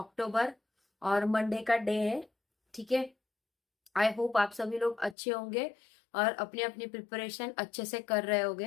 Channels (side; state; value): right; drops out; at 5.2 s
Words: और मंडे का डे है। ठीक है, आई होप आप सभी लोग अच्छे होंगे और अपनी अपनी प्रिपरेशन अच्छे से कर रहे